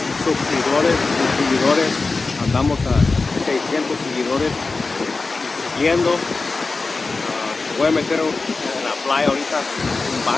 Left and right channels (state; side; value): quieter; right; 3.9 dB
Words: seguidores. Andamos a 600 seguidores siguiendo. Voy a meter en la playa ahorita un